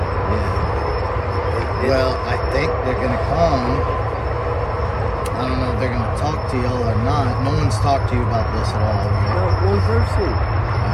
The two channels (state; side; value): identical; both; correlation 1.00